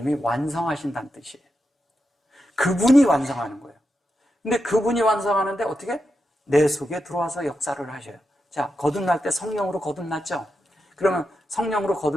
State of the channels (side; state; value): both; normal; correlation 0.87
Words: 완성하신다는 뜻이에요. 그분이 완성하는 거예요. 근데 그분이 완성하는데 어떻게? 내 속에 들어와서 역사를 하셔요. 자, 거듭날 때 성령으로 거듭났죠? 그러면 성령으로